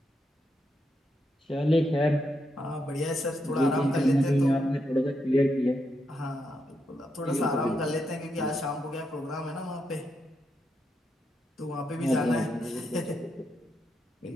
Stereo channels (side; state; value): both; normal; correlation 0.82